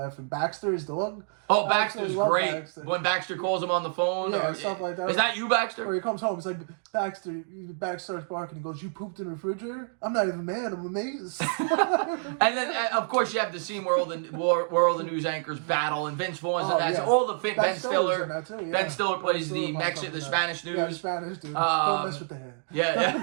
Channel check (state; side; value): silent; left; digital silence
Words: And Baxter, his dog. Oh, Baxter's great. Baxter. When Baxter calls him on the phone. Yeah, stuff like that. Is that you, Baxter? Or he comes home, it's like, Baxter starts barking and goes, "You pooped in the refrigerator? I'm not even mad, I'm amazed." And then, of course, you have the scene where all the news anchors battle, and Vince Vaughn's in that. Yeah. So all the Ben Stiller. Ben Stiller plays the Spanish news. Yeah, Spanish dude. Don't mess with the head.